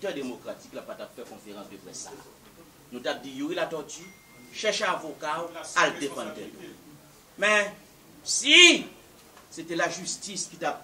démocratique n'a pas fait conférence de presse. Nous avons dit, Yuri la tortue, cherche un avocat à le défendre. Mais si c'était la justice qui t'a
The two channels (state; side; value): identical; both; correlation 1.00